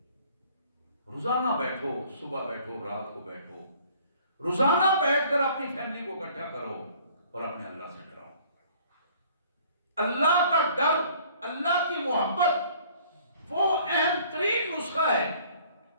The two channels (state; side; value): inverted; both; correlation -0.55